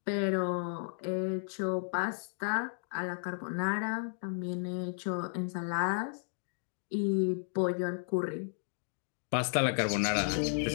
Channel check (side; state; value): right; silent; digital silence